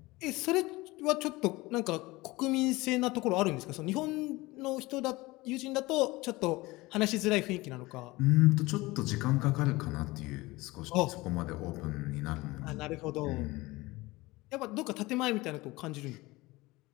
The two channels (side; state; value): right; quieter; 21.0 dB